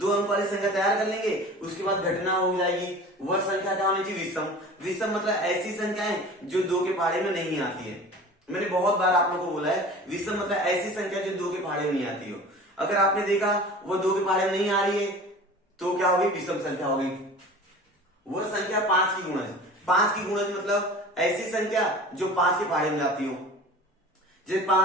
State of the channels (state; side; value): normal; both; correlation 0.40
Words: अंक वाली संख्या तैयार कर लेंगे, उसके बाद घटना हो जाएगी। वह संख्या क्या होनी चाहिए विषम। विषम मतलब ऐसी संख्याएं जो 2 के पहाड़े में नहीं आती है। मैंने बहुत बार आप लोगों को बोला है विषम मतलब ऐसी संख्या जो 2 के पहाड़े में नहीं आती हो। अगर आपने देखा वो 2 के पहाड़े में नहीं आ रही है तो क्या होगी विषम संख्या होगी। वह संख्या 5 की गुणज। 5 की गुणज मतलब ऐसी संख्या जो 5 के पहाड़े में जाती हो, जैसे